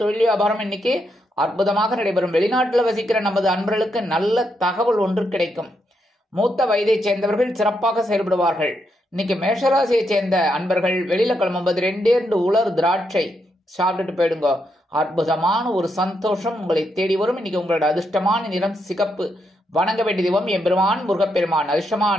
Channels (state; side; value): normal; both; correlation 0.80